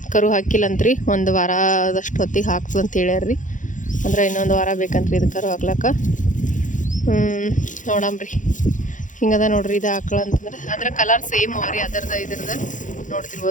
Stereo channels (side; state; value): right; late; 0.37 ms